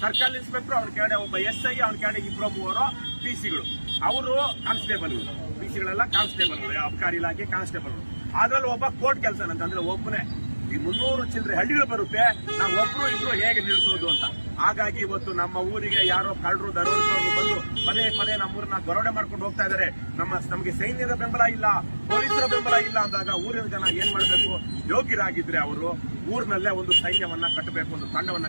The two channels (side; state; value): both; inverted; correlation -1.00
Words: ಸರ್ಕಲ್ ಇನ್ಸ್ಪೆಕ್ಟರ್, ಅವ್ರ ಕೆಳಗಡೆ ಒಬ್ಬ SI, ಅವ್ರ ಕೆಳಗಡೆ 2-3 ಪಿಸಿಗಳು. ಅವರು ಕಾನ್ಸ್ಟೇಬಲ್ಗಳು, ಪಿಸಿಗಳೆಲ್ಲ ಕಾನ್ಸ್ಟೇಬಲ್ಗಳು, ಅಬಕಾರಿ ಇಲಾಖೆ ಕಾನ್ಸ್ಟೇಬಲ್ಗಳು. ಅದ್ರಲ್ಲಿ ಒಬ್ಬ ಕೋರ್ಟ್ ಕೆಲಸ ಅಂತಂದ್ರೆ ಒಬ್ಬನೇ. ಈ 300 ಚಿಲ್ಲರೆ ಹಳ್ಳಿಗಳು ಬರುತ್ತೆ, ನಾವು ಒಬ್ರು ಇಬ್ರು ಹೇಗೆ ನಿಲ್ಲಿಸೋದು ಅಂತ. ಹಾಗಾಗಿ ಇವತ್ತು ನಮ್ಮ ಊರಿಗೆ ಯಾರೋ ಕಳ್ಳರು, ದರೋಡೆಕೋರರು ಬಂದು ಪದೇ ನಮ್ಮೂರನ್ನ ದರೋಡೆ ಮಾಡ್ಕೊಂಡು ಹೋಗ್ತಾ ಇದ್ದಾರೆ. ನಮಗೆ ಸೈನ್ಯದ ಬೆಂಬಲ ಇಲ್ಲ, ಪೊಲೀಸರ ಬೆಂಬಲ ಇಲ್ಲ ಅಂದಾಗ ಊರಿನ ಜನ ಏನ್ ಮಾಡಬೇಕು? ಯೋಗ್ಯರಾಗಿದ್ರೆ ಅವರು ಊರಿನಲ್ಲೇ ಒಂದು ಸೈನ್ಯವನ್ನ ಕಟ್ಟಬೇಕು, ಒಂದು